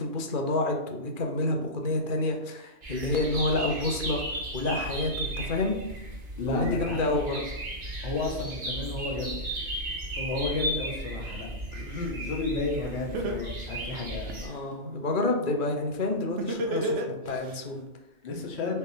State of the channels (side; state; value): left; late; 2.4 ms